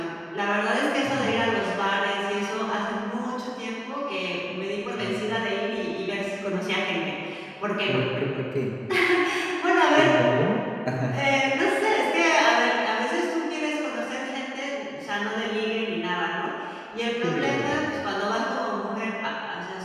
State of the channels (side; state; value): both; identical; correlation 1.00